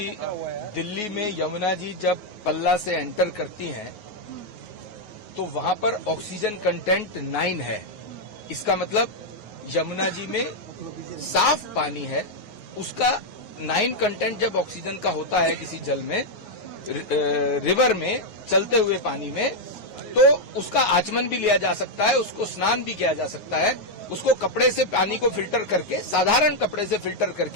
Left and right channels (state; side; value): late; right; 9.5 ms